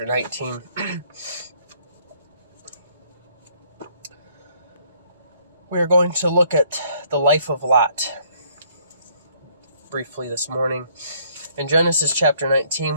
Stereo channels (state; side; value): inverted; both; correlation -0.64